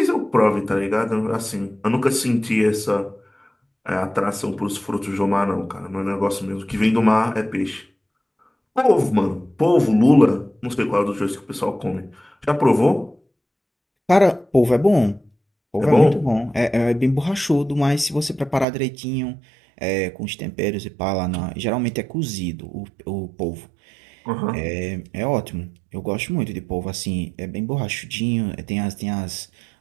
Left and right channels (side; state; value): left; drops out; at 18.7 s